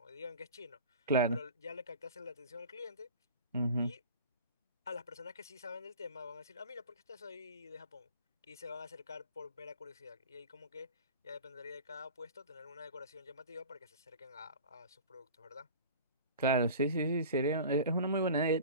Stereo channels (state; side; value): inverted; both; correlation -0.38